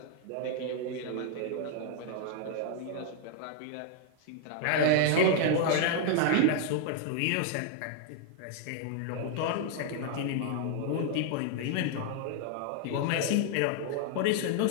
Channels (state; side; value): different; both; correlation 0.00